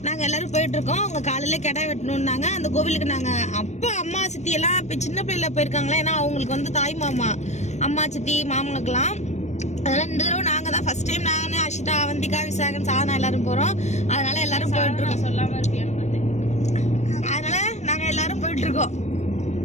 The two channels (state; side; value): late; right; 0.33 ms